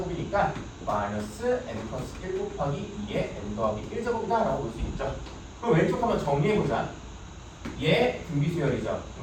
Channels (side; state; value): both; identical; correlation 1.00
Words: 마이너스 n 플러스 1 곱하기 2의 n 더하기 1제곱이다 라고 볼 수 있죠. 그럼 왼쪽 한번 정리해보자. 얘 등비수열이죠.